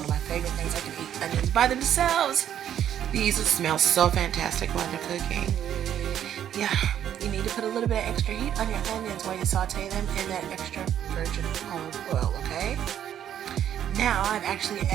of my favorite things. I can eat onions by themselves. These smell so fantastic while they're cooking. Yeah, you need to put a little bit of extra heat on your onions while you saute them in that extra virgin olive oil, okay? Now I've actually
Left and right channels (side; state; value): left; quieter; 10.2 dB